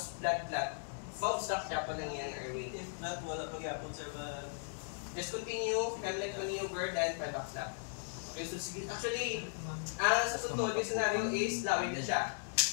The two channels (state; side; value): silent; right; digital silence